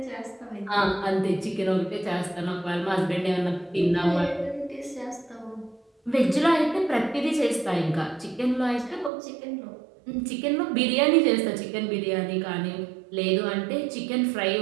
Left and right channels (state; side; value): drops out; left; at 9.1 s